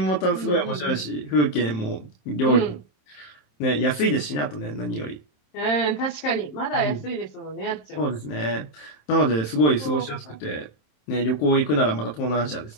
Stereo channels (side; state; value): right; late; 27 ms